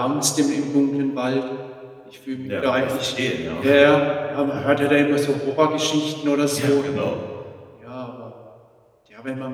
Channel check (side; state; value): both; identical; correlation 1.00